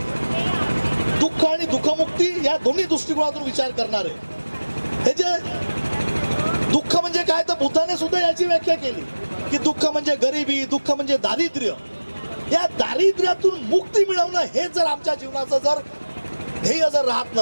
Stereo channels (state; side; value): inverted; both; correlation -1.00